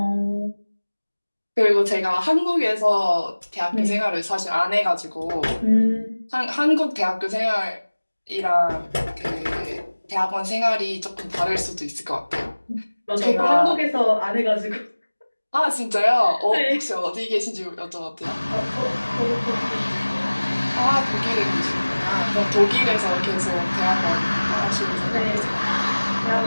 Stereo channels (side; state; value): both; inverted; correlation -1.00